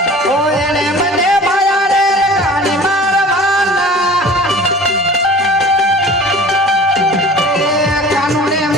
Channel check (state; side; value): normal; both; correlation 0.43